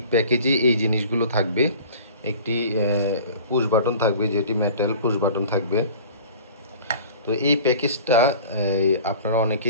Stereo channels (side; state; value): both; inverted; correlation -0.44